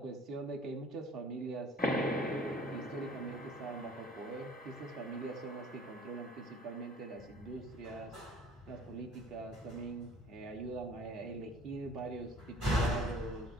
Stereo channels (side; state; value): both; normal; correlation 0.51